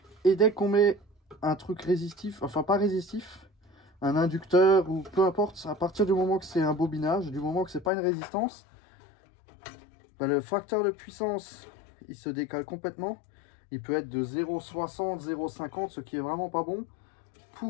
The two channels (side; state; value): right; drops out; at 7.9 s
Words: Et dès qu'on met un truc résistif, enfin pas résistif, un inducteur ou peu importe, à partir du moment que c'est un bobinage, du moment que c'est pas une résistance, le facteur de puissance il se décale complètement. Il peut être de 0,60, 0,50, ce qui est vraiment pas bon.